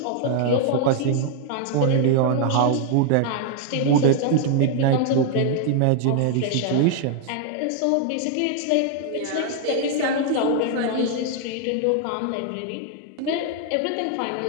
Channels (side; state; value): both; different; correlation 0.00